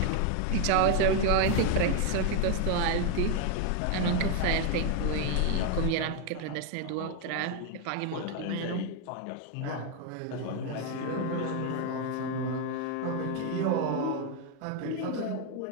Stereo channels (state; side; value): different; both; correlation 0.01